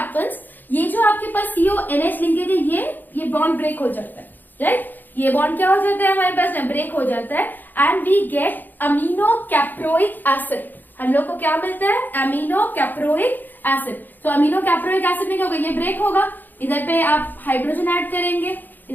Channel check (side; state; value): right; late; 0.088 ms